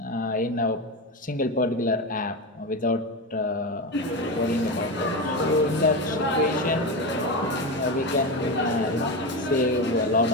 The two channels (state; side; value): normal; both; correlation 0.18